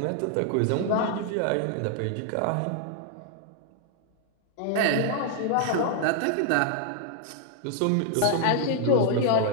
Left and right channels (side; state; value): both; different; correlation 0.00